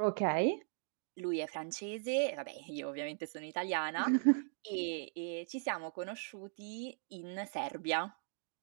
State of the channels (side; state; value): left; silent; digital silence